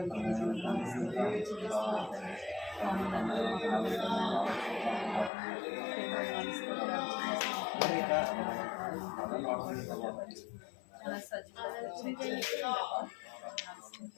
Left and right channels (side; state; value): right; drops out; at 5.3 s